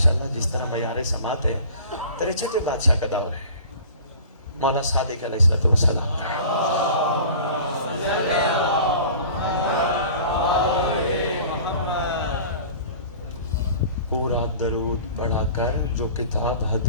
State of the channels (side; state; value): both; inverted; correlation -0.43